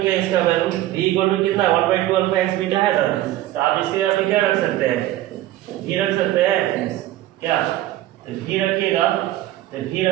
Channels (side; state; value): left; quieter; 14.7 dB